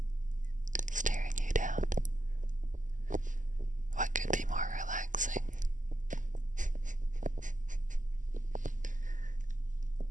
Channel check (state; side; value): late; left; 0.37 ms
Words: Staring you down. What could be more relaxing?